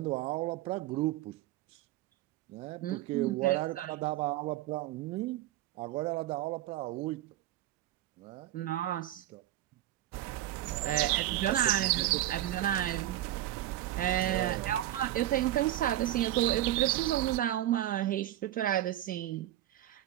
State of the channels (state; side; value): quieter; left; 13.8 dB